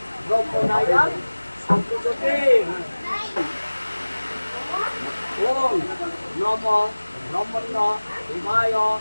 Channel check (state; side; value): inverted; both; correlation -1.00